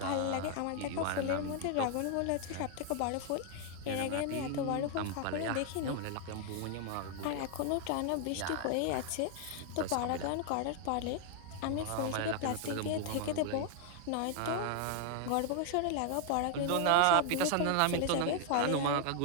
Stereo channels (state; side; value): different; both; correlation 0.00